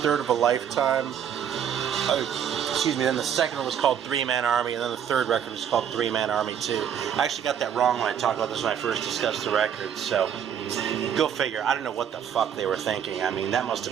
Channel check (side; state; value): left; quieter; 8.7 dB